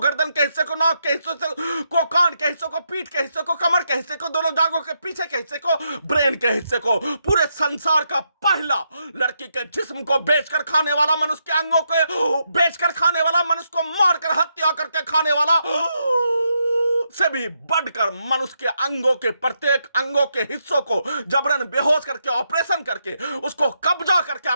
के हिस्से को, नाक के हिस्से को, कान के हिस्से को, पीठ के हिस्से को, कमर के हिस्से को, दोनों जांघों के पीछे के हिस्से को, ब्रेन के हिस्से को, पूरे संसार का पहला लड़की के जिस्म को बेचकर खाने वाला, मनुष्य के अंगों को बेचकर खाने वाला, मनुष्य को मारकर हत्या करके खाने वाला से भी बढ़कर मनुष्य के अंगों के प्रत्येक अंगों के हिस्सों को जबरन बेहोश करके, ऑपरेशन करके, उसको कब्जा करके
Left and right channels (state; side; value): inverted; both; correlation -0.81